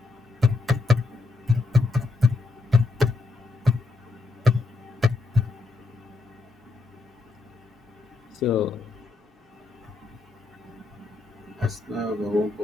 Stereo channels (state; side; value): quieter; right; 3.7 dB